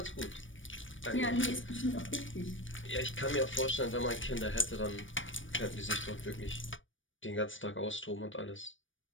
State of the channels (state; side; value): late; right; 0.56 ms